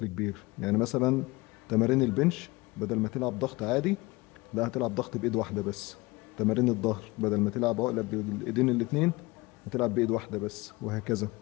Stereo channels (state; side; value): quieter; right; 23.0 dB